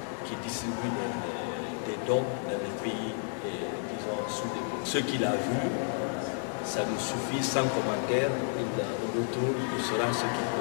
qui distribue des dons dans les pays, disons, sous-développés. Ce qu'il a vu, ça nous suffit sans commentaire. Au retour, il saura ce qu'il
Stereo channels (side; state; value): right; silent; 57 dB below the other